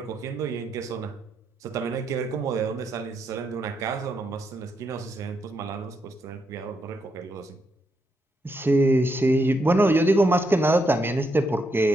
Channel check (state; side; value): normal; both; correlation 0.80